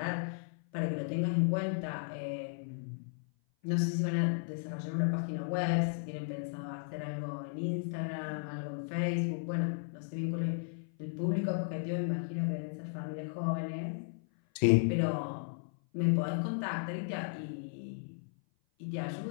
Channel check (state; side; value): silent; right; 54 dB below the other